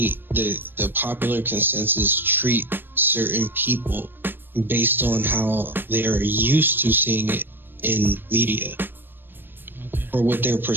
the popular consensus treat certain people based on how they're used to seeing it in media, or what their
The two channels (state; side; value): late; left; 0.096 ms